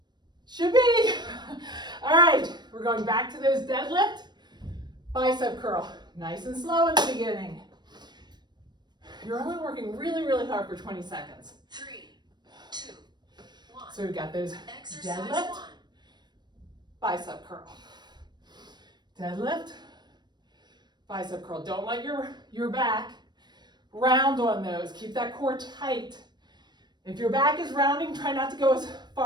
Should be. All right, we're going back to those deadlift, bicep curl. Nice and slow in the beginning. You're only working really, really hard for 20 seconds. 3, 2, 1. So we've got those Exercise deadlift, 1. bicep curl. Deadlift, bicep curl. Don't let your back round on those. Keep that core tight. If your back is rounding, try not to go as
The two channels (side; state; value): left; late; 0.21 ms